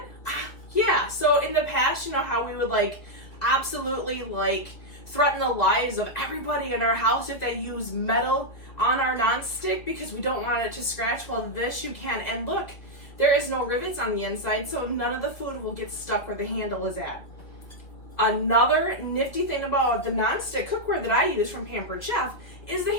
Yeah, so in the past, you know how we would absolutely threaten the lives of everybody in our house if they use metal on our nonstick because we don't want it to scratch. Well, this you can. And look, there is no rivets on the inside, so none of the food will get stuck where the handle is at. Another nifty thing about the nonstick cookware that I use from Pampered Chef is the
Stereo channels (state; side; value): late; right; 2.2 ms